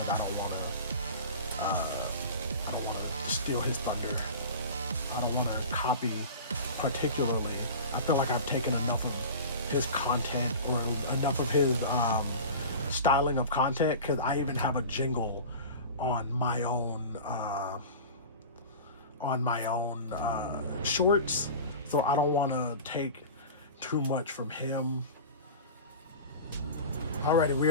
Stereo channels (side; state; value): both; inverted; correlation -0.34